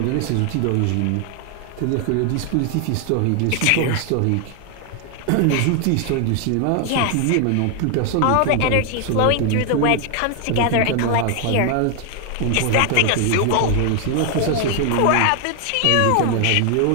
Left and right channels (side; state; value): both; different; correlation 0.00